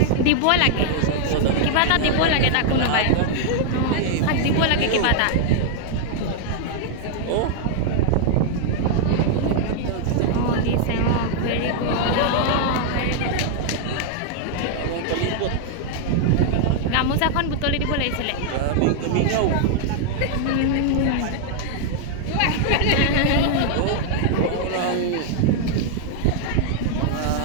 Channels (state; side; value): different; both; correlation 0.00